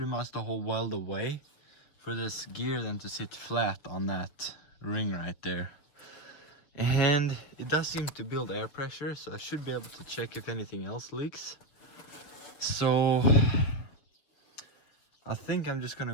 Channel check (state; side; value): late; right; 7.0 ms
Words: much the whole weld away for this gear then to sit flat on that ring right there. And it does seem to build air pressure, so I should be able to check if anything else leaks. So I think I'm just